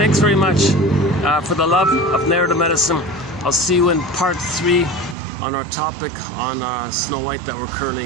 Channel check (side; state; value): left; drops out; at 5.2 s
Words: very much. For the love of narrative medicine, I'll see you in part 3 on our topic on Snow White that we're